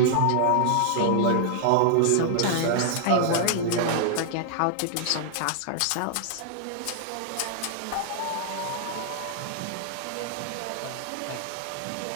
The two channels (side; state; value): both; different; correlation -0.01